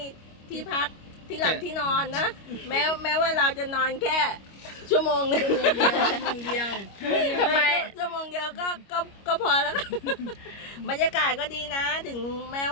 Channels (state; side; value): late; right; 25 ms